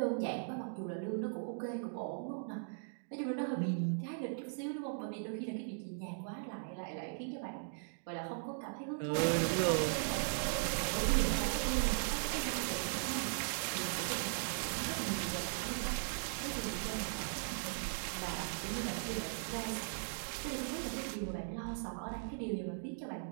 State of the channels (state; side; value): silent; left; digital silence